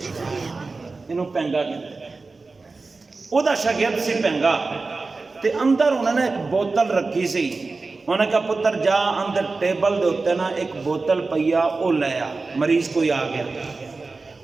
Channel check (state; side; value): quieter; left; 3.8 dB